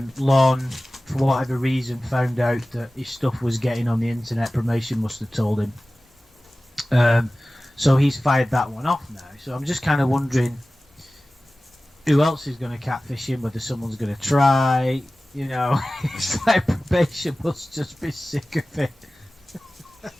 Lorne, for whatever reason, found out that his stuff was getting on the internet. Promotion must have told him. So he's fired that one off now. So I'm just kind of wondering who else is going to catfish him, whether someone's going to try, you know. It's like probation must just be sick of it.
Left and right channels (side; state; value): both; normal; correlation 0.97